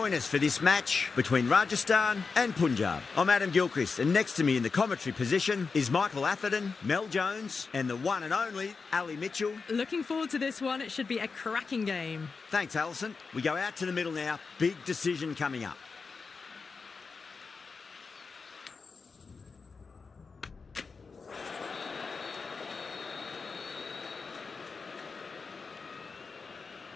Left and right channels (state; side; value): quieter; right; 4.7 dB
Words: us for this match between Rajasthan and Punjab. I'm Adam Gilchrist, and next to me in the commentary position is Michael Atherton, Mel Jones, and the one and only Ali Mitchell. Looking forward to this one. It should be a cracking game. Thanks, Alison. We go out to the middle now. Big decision coming up.